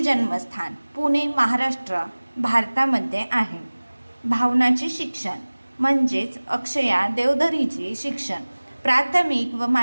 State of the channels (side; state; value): both; inverted; correlation -1.00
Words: पुणे महाराष्ट्र भारतामध्ये आहे। भावनाचे शिक्षण म्हणजेच अक्षया देवधरीचे शिक्षण प्राथमिक व